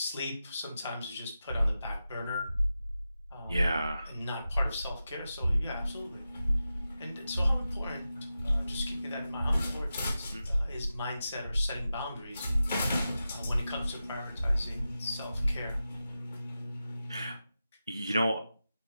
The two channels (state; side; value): inverted; both; correlation -0.92